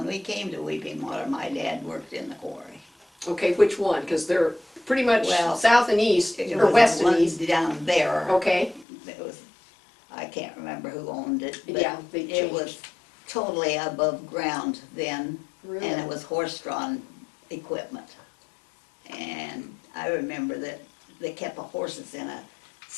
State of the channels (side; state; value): right; drops out; at 8.8 s